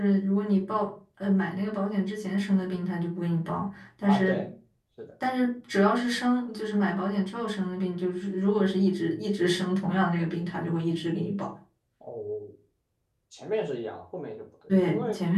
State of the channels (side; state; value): both; identical; correlation 1.00